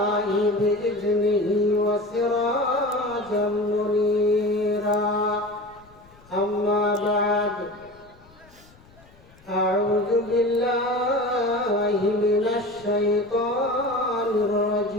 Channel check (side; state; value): left; noise; rumble, 27 dB below the sound